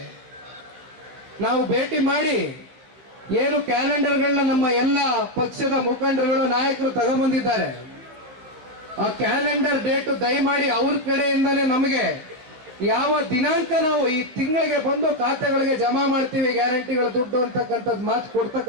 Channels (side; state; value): left; late; 16 ms